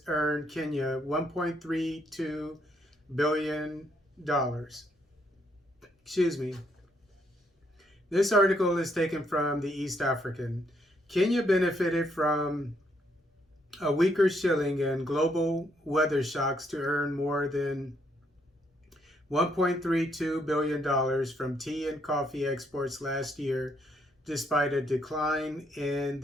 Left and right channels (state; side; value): normal; both; correlation 0.73